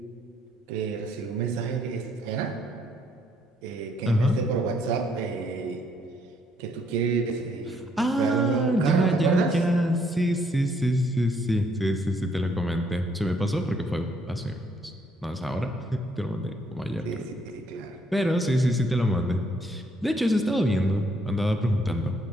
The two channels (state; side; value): normal; both; correlation 0.69